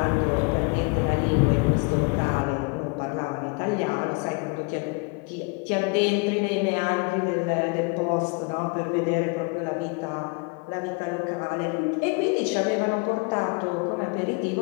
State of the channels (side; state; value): right; quieter; 32.0 dB